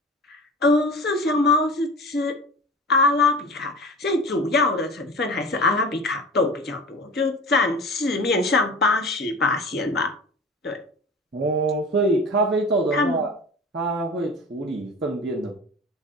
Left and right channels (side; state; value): both; normal; correlation 0.36